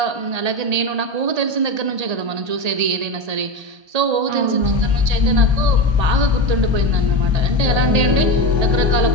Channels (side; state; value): left; late; 1.8 ms